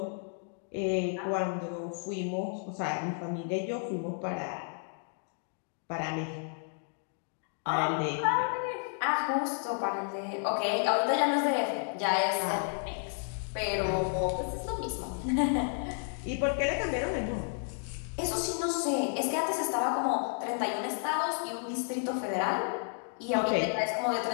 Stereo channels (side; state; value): right; silent; 56 dB below the other